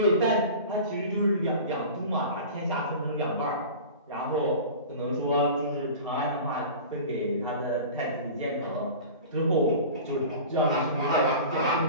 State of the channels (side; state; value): both; inverted; correlation -0.36